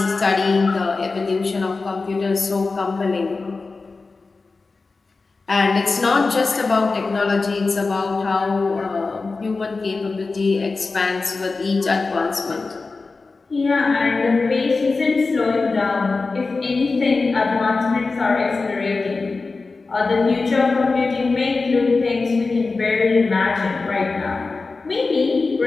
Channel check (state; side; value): quieter; right; 3.9 dB